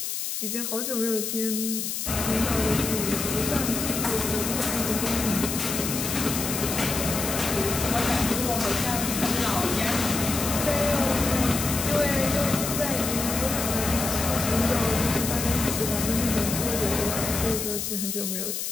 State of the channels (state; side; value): noise; left; hiss, 3 dB below the sound